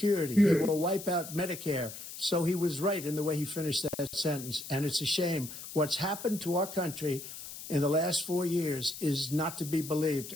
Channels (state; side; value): noise; left; hiss, 11 dB below the sound